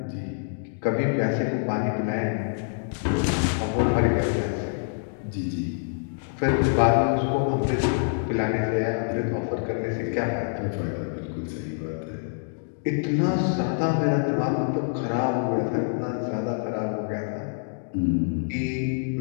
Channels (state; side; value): silent; right; digital silence